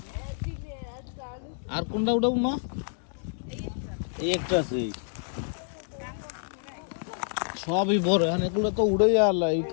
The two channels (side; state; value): right; silent; digital silence